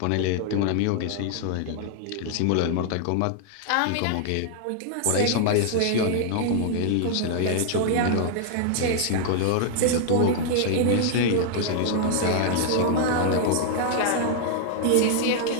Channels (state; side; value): different; both; correlation -0.01